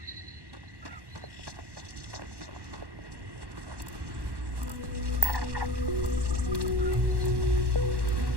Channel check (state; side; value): late; left; 1.1 ms